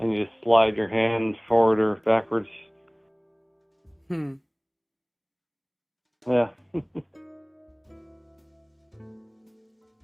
you just slide your hand forward or backwards. Hmm. Yeah. All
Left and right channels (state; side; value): identical; both; correlation 1.00